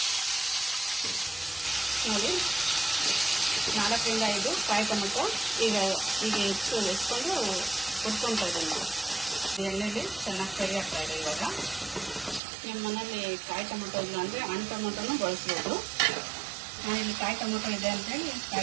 ನೋಡಿ, 4 ರಿಂದ 5 ಕಾಯಿ ಟೊಮೊಟೊ ಈಗ ಎತ್ಕೊಂಡು ಹುರ್ಕೊಳ್ತಾ ಇದ್ದೀನಿ. ಎಣ್ಣೆಲಿ ಚೆನ್ನಾಗಿ ಫ್ರೈ ಆಗ್ತಾ ಇದೆ. ಇವಾಗ ನಿಮ್ಮ ಮನೇಲಿ ಕಾಯಿ ಟೊಮೊಟೊ ಇಲ್ಲ ಅಂದರೆ ಹಣ್ಣು ಟೊಮೊಟೊನೂ ಬಳಸ್ಬೋದು. ನಾನಿಲ್ಲಿ ಕಾಯಿ ಟೊಮೊಟೊ ಇದೆ ಅಂತೇಳಿ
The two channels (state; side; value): drops out; left; at 12.4 s